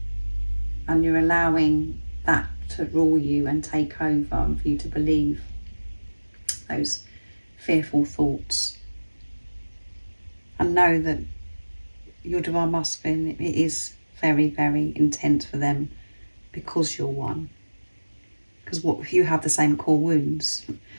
and you're allowing that to rule you and take over and for you to believe those fearful thoughts. And know that your divine masculine, it is very, very intent for them because you're one. Because you have the same core wounds.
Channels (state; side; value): inverted; both; correlation -1.00